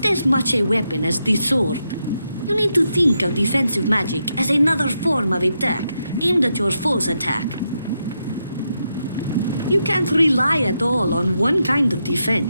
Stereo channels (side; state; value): both; inverted; correlation -0.84